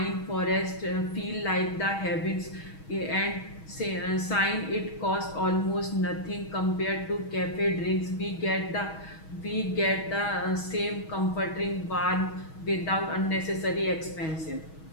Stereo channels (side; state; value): right; late; 6.3 ms